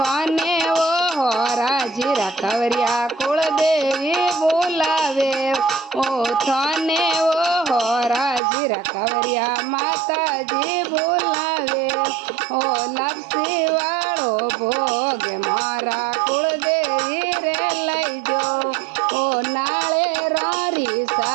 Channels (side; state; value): left; drops out; at 8.4 s